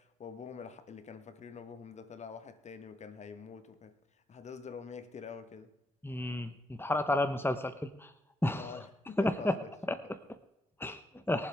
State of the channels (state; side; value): normal; both; correlation 0.79